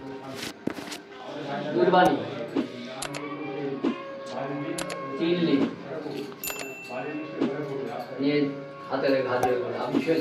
दूरवाणी चिल्ली ये हाथे घाटे आप छुए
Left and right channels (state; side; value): identical; both; correlation 1.00